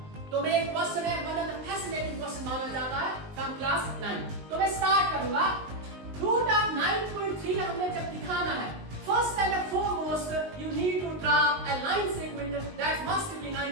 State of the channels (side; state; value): left; late; 19 ms